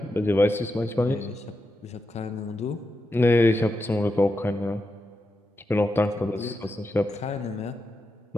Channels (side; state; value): both; normal; correlation 0.87